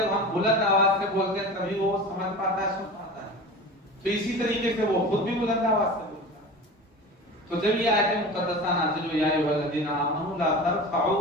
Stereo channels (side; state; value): both; normal; correlation 0.33